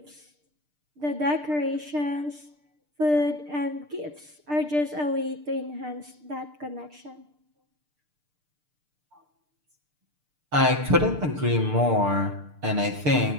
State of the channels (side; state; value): left; late; 6.7 ms